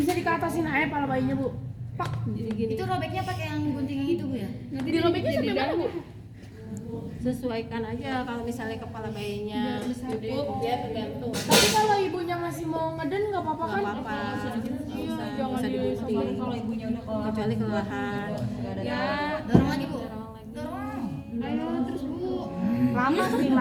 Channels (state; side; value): identical; both; correlation 1.00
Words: bisa dikatasin aja pala bayinya Bu. Pak. Jadi gini, Itu robeknya pakai yang gunting yang itu Bu ya? Nanti Dirobeknya sampai mana Bu? sesuaikan aja. Kalau misalnya kepala bayinya cukup ya tergantung. Tapi kalau ibunya masih mau ngeden nggak apa-apa Nggak kan? apa-apa, Iya, nggak jangan usah digunting. disobarin Kalau ibunya udah keluar. Kecuali kelelahan. Ya, Dorong lagi Bu. dorong lagi. Dorong. Ayo terus Bu. Lama sih